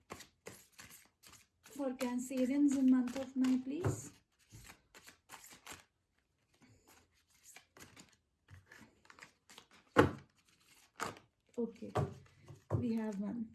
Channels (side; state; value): both; identical; correlation 1.00